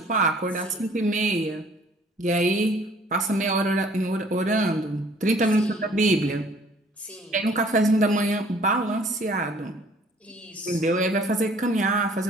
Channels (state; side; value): normal; both; correlation 0.56